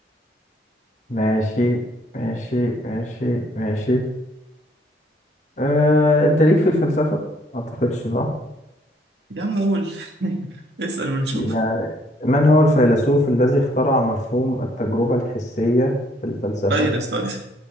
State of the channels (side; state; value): both; normal; correlation 0.66